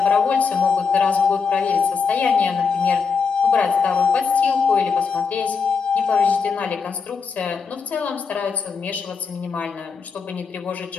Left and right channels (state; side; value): quieter; right; 5.4 dB